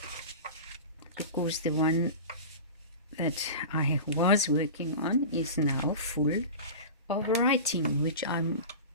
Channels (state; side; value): inverted; both; correlation -0.31